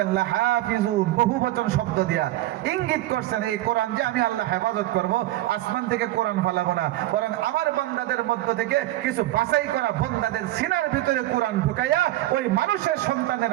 লাহাফিজুন, বহু বচন শব্দ দিয়া ইঙ্গিত করছেন এই কোরআন যে আমি আল্লাহ হেফাজত করব, আসমান থেকে কোরআন ফালাবো না, বরং আমার বান্দাদের মধ্য থেকে কিছু বাছাই করা বান্দাদের সিনার ভিতরে কোরআন ঢুকাইয়া ওই মানুষের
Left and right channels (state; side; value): quieter; left; 15.8 dB